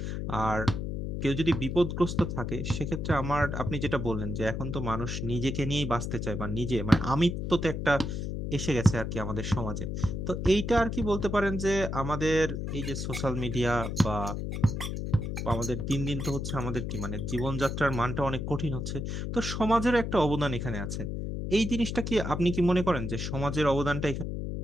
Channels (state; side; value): noise; left; hum, 3 dB below the sound